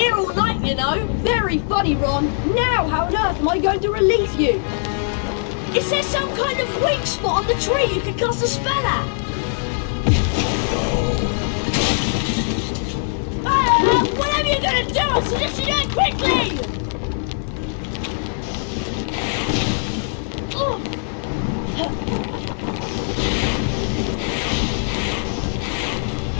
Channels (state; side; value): silent; right; 65 dB below the other